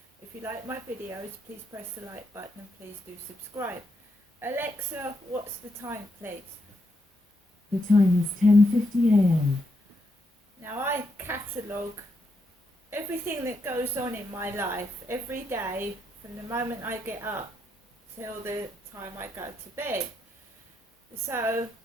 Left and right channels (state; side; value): normal; both; correlation 0.81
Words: If you like my videos, please press the like button and please do subscribe. Alexa, what's the time, please? The time is 10:50 a.m. Now I catalogue everything that goes on in my life every day from the moment I get up till the time I go to bed. So